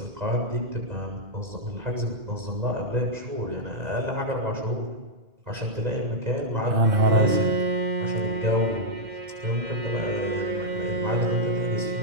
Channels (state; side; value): late; left; 2.0 ms